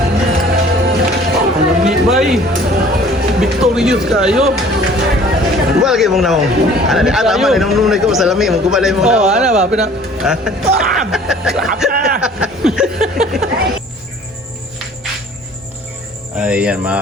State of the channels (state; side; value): normal; both; correlation 0.51